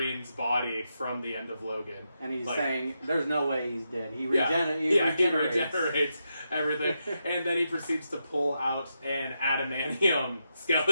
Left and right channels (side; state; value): both; inverted; correlation -0.85